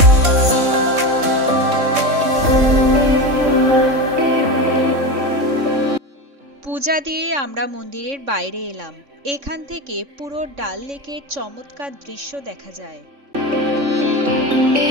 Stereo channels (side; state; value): left; late; 3.6 ms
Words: পূজা দিয়ে আমরা মন্দিরের বাইরে এলাম। এখান থেকে পুরো ডাল লেকের চমৎকার দৃশ্য দেখা যায়।